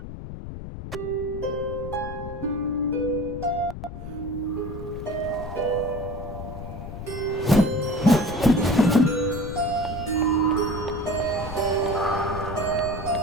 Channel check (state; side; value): noise; left; rumble, 9 dB below the sound